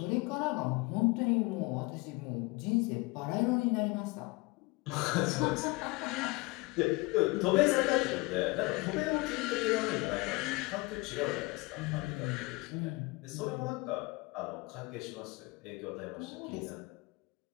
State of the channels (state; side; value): quieter; right; 24.6 dB